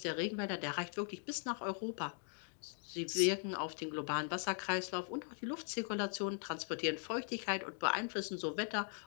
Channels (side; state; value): right; silent; 51 dB below the other